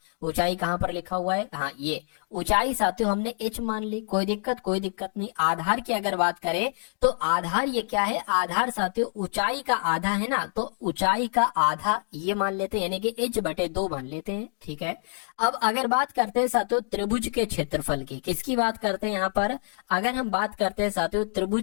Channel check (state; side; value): silent; right; digital silence